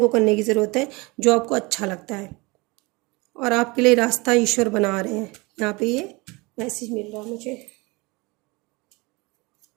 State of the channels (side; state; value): left; quieter; 25.4 dB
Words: करने की ज़रूरत है जो आपको अच्छा लगता है, और आपके लिए रास्ता ईश्वर बना रहे हैं। यहाँ पे ये मैसेज मिल रहा है मुझे।